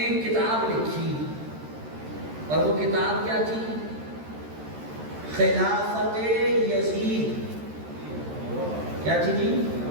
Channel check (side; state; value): left; late; 13 ms